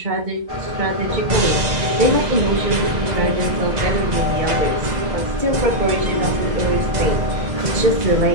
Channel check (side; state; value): left; late; 2.0 ms